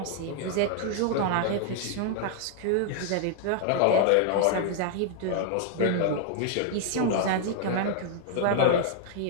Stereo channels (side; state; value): both; different; correlation 0.00